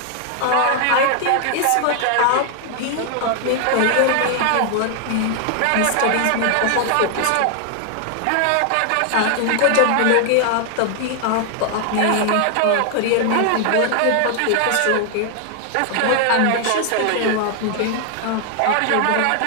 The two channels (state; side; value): different; both; correlation 0.00